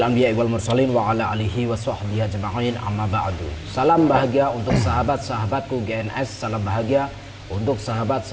anbiya'i wal mursalin wa ala alihi wa sahbihi ajma'in, amma ba'du. Salam bahagia untuk sahabat-sahabatku GNS, salam bahagia untuk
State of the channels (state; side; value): identical; both; correlation 1.00